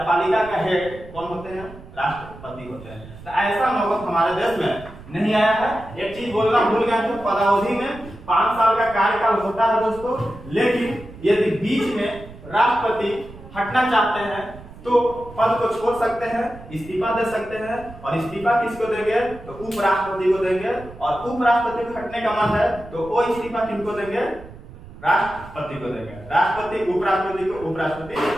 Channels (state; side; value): noise; right; rumble, 17 dB below the sound